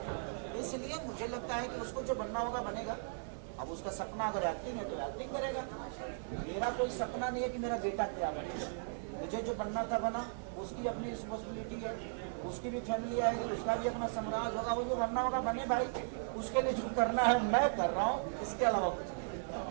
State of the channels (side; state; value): left; silent; 53 dB below the other